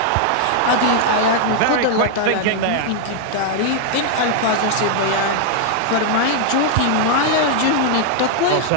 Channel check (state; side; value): different; both; correlation 0.00